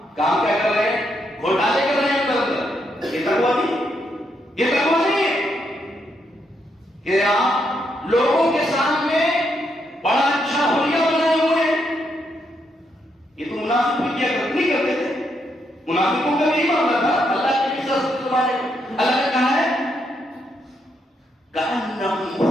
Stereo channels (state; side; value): normal; both; correlation 0.78